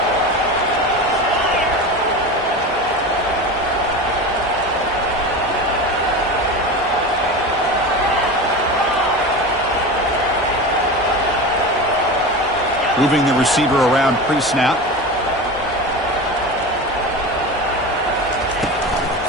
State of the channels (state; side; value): normal; both; correlation 0.27